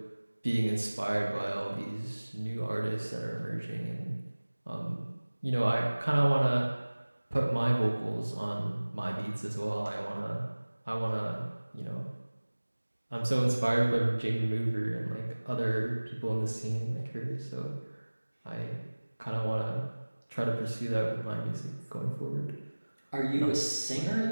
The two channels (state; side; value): inverted; both; correlation -1.00